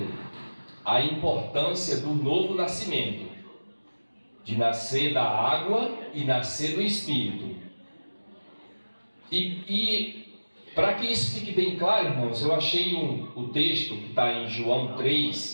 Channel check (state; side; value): inverted; both; correlation -1.00